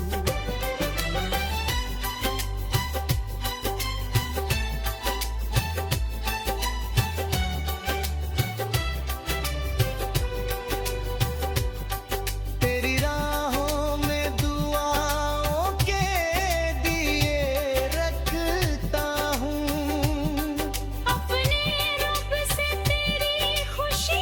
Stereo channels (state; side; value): identical; both; correlation 1.00